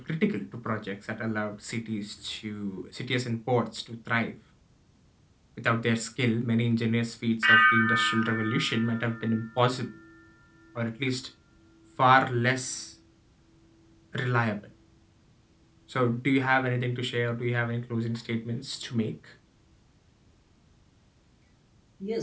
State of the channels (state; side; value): identical; both; correlation 1.00